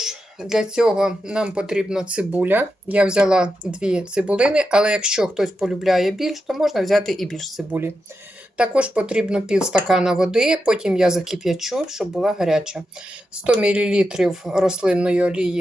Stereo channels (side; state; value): both; normal; correlation 0.88